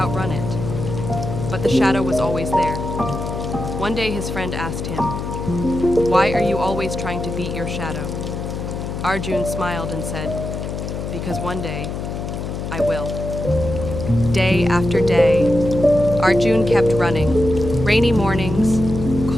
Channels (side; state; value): left; noise; hum, 5 dB below the sound